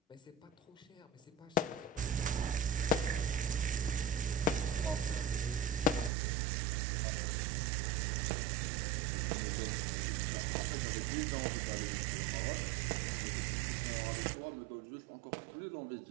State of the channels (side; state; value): left; drops out; at 6.1 s